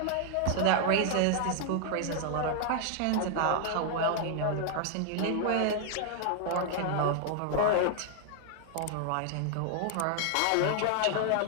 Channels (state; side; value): different; both; correlation 0.00